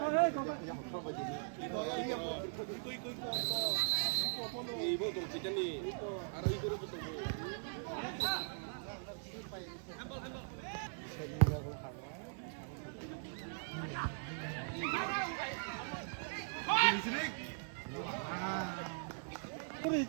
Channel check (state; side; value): silent; left; digital silence